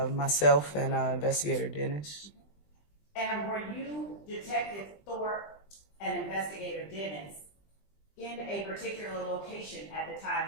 myself, and Investigator Dennis. And were you Detective Thorpe and Investigator Dennis in a particular location at the time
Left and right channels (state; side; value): late; right; 20 ms